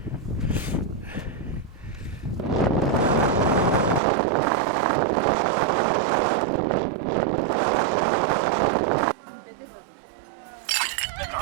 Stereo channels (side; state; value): left; drops out; at 4.0 s